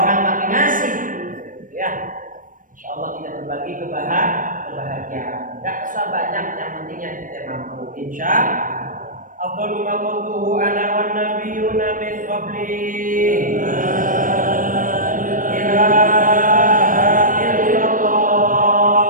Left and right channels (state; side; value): late; left; 0.39 ms